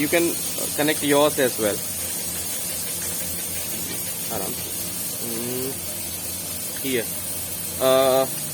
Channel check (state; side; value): identical; both; correlation 1.00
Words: can connect yours as well. Here,